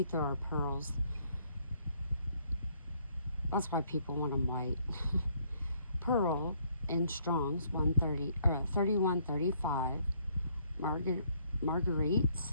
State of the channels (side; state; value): both; inverted; correlation -0.67